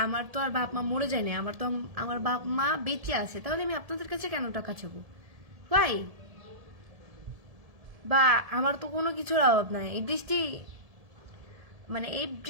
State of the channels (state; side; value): late; left; 1.7 ms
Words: আমার তো আর বাপ মা মরে যায় না, আমার বাপ মা বেঁচে আছে, তাহলে আমি আপনাদের কাছে কেন টাকা চাবো ভাই? বা আমার তো কোনো কিছুর অভাব নাই। এই